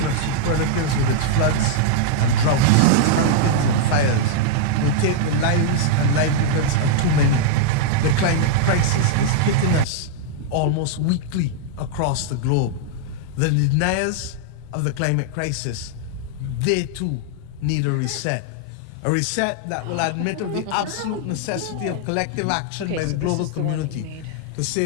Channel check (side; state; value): both; different; correlation -0.01